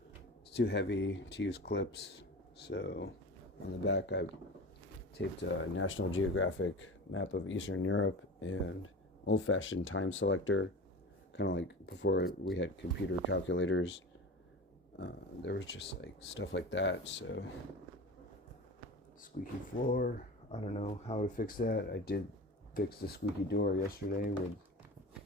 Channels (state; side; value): normal; both; correlation 0.32